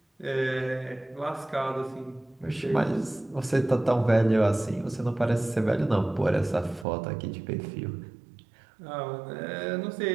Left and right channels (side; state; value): left; drops out; at 6.9 s